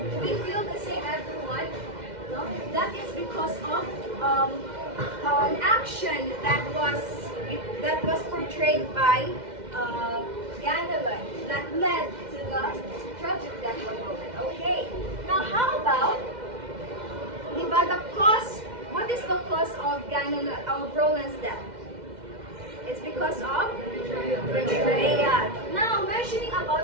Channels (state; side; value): late; left; 2.1 ms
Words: Do we feel the same, everyone? No? That is because of an action that was portrayed by Ganelon that led to the tragic death of Roland. Okay. Now how about the cause? What is the cause of Roland's death? It's because of betrayal. Now, mentioning